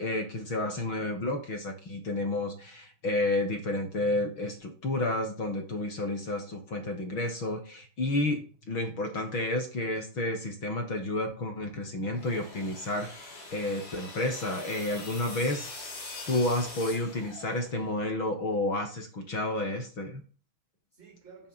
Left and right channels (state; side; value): late; right; 6.2 ms